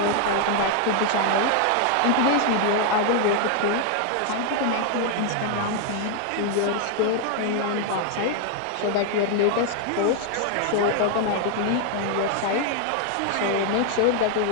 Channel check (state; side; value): different; both; correlation 0.00